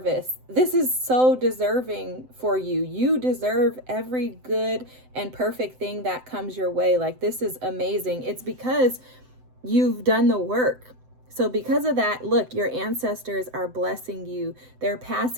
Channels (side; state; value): left; late; 7.8 ms